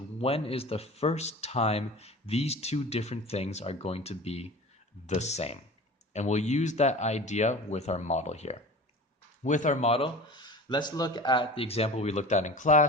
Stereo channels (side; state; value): both; normal; correlation 0.37